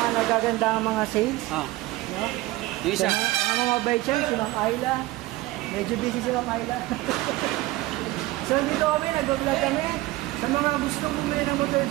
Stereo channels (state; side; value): quieter; left; 18.6 dB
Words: nagagandang mga sales. No? Yung isa. Ang mga baychan, si Ma'am Ayla. Medyo busy si Ma'am Ayla. So dito kami, nag-vlog kami. Sa mga gusto bumili ng motor